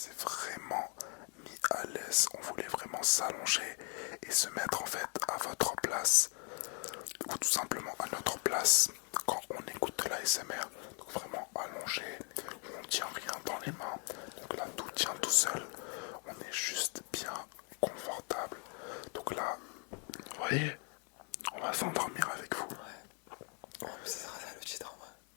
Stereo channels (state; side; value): quieter; right; 38.5 dB